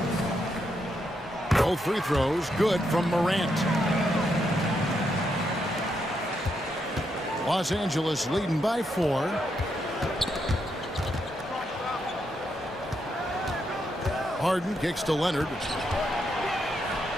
Both free throws good from Morant. Los Angeles leading by 4. Harden kicks to Leonard.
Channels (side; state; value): both; normal; correlation 0.80